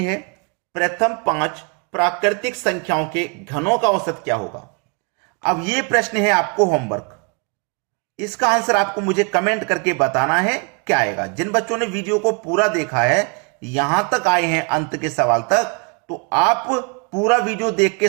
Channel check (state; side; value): quieter; left; 35.0 dB